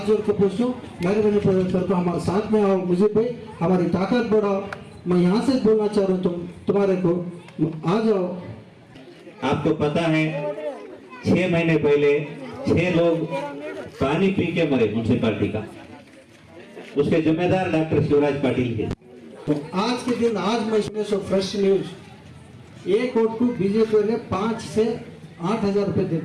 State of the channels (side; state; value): both; identical; correlation 1.00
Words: जोड़ के पूछूं, मेहरबानी करके हमारे साथ में आओ, मुझे भाई हमारी ताकत बढ़ाओ। मैं यहाँ से बोलना चाह रहा हूँ तुम्हारे को, आ जाओ। आपको पता है 6 महीने पहले 6 लोग पानी पी के मरे म्यूनसिपालिटी का, उसके जिम्मेदार डॉक्टर शिवराज पाटिल थे। तो आज के दिन आज मैं इसमें सो फ्रेश न्यूज, एक वोट को बीजेपी ने 5 से 8 हजार रुपए